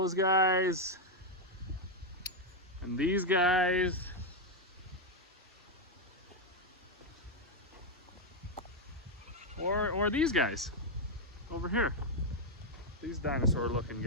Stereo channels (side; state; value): both; normal; correlation 0.02